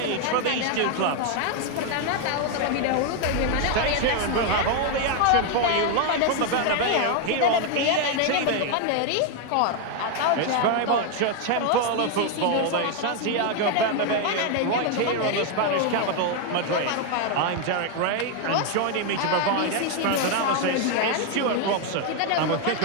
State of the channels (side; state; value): both; different; correlation 0.01